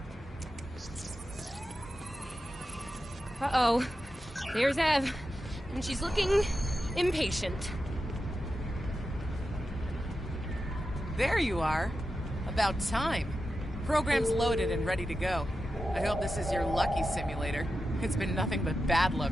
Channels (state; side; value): normal; both; correlation 0.90